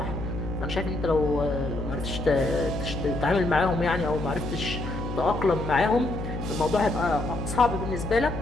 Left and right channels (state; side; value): noise; left; hum, 6 dB below the sound